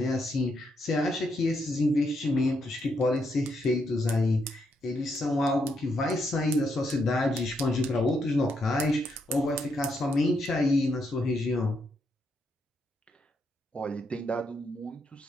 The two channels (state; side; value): normal; both; correlation 0.78